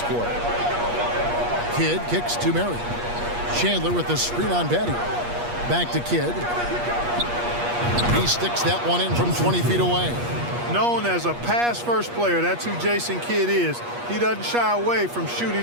quarter. Kidd kicks to Marion. Chandler with the screen on Batty. Back to Kidd. He sticks that one in from 20 feet away. Known as a pass-first player, that's who Jason Kidd is. He doesn't shy away from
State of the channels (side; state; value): left; late; 8.4 ms